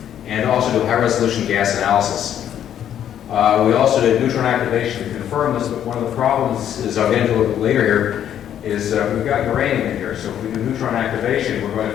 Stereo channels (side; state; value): right; quieter; 10.2 dB